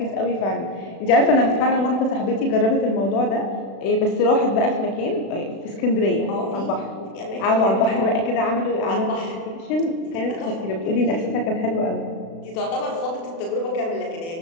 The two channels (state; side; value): late; right; 36 ms